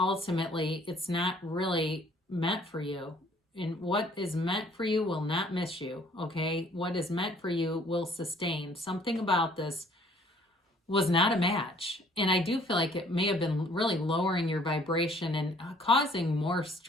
it's not really meant for you. And what is meant for you will not miss you, okay? What is meant for you will sustain. Something about this was not a match. And I do feel like it may have been really lowering your vibration and causing more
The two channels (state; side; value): normal; both; correlation 0.59